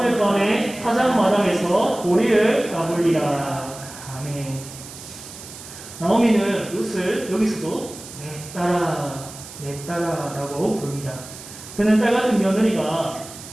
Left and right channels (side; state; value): right; noise; hiss, 15 dB below the sound